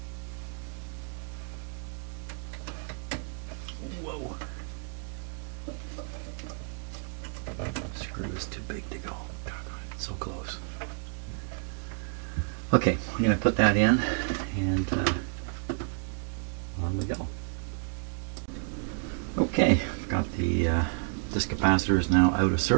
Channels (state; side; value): quieter; left; 38.0 dB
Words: Whoa. Screw is too big to go. It's so close. Okay, we're going to put that in, and on we go. Okay, I've got this capacitor is now out of